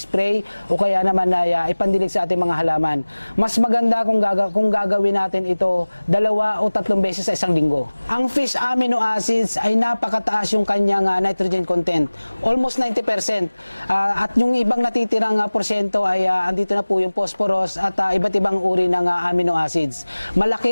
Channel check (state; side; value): inverted; both; correlation -1.00